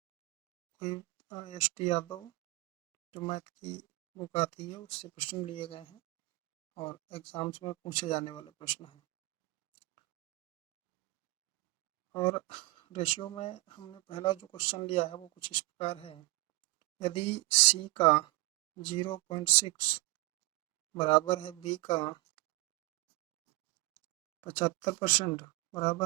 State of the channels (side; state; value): left; quieter; 22.4 dB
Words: कोई एस.टी. यादव जो मैथ की बुक आती है उससे प्रश्न लिए गए हैं और एग्ज़ाम्स में पूछे जाने वाले प्रश्न हैं। और रेशियो में हमने पहला जो क्वेश्चन लिया है वो कुछ इस प्रकार है। यदि C का 0.6 बराबर है B का 75%